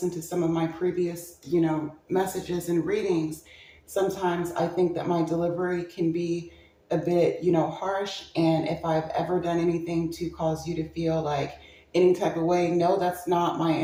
to some of my previous, messages and readings, sometimes I think that my delivery can be a bit, harsh. And if I've ever done anything to cause you to feel like any type of way, no, that's not my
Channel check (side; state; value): both; identical; correlation 1.00